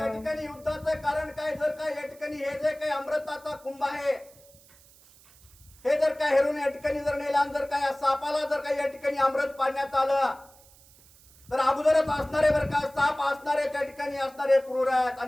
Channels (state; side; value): noise; right; hiss, 26 dB below the sound